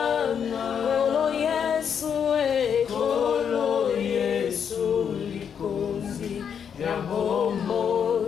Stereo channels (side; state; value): right; quieter; 7.6 dB